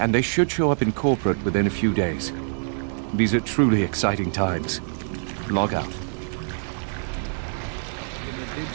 they should show up in corporate within a few days. These are truly exciting times. Log out. In the dig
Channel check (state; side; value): silent; left; digital silence